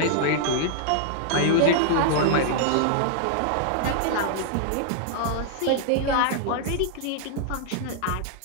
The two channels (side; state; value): both; different; correlation -0.01